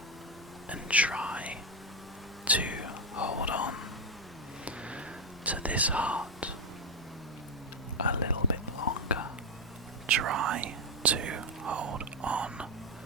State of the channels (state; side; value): normal; both; correlation 0.06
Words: and try to hold on to this heart a little bit longer. Try to hold on